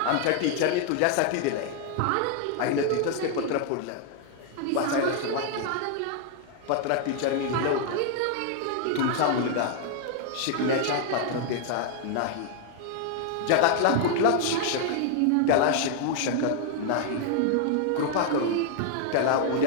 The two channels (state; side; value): different; both; correlation 0.00